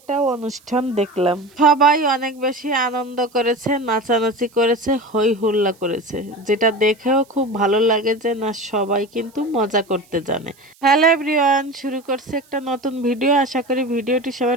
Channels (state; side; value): noise; right; hiss, 30 dB below the sound